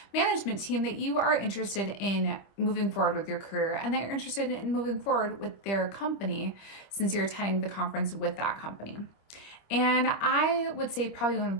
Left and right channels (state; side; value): late; right; 25 ms